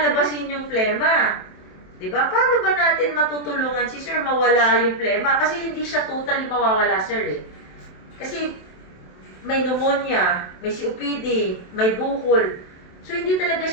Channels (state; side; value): late; right; 27 ms